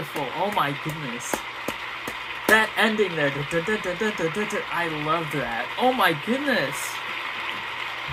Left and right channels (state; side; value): identical; both; correlation 1.00